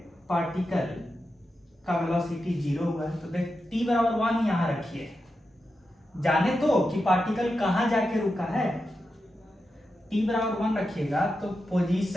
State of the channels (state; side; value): normal; both; correlation 0.89